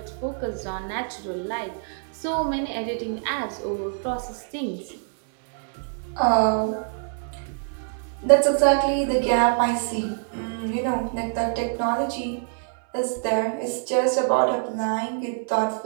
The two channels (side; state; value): left; silent; digital silence